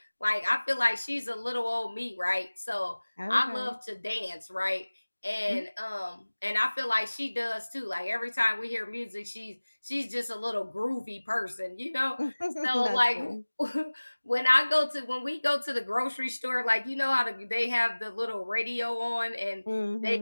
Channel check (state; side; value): inverted; both; correlation -1.00